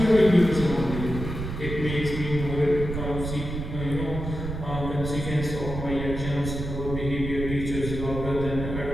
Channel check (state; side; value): noise; right; rumble, 6 dB below the sound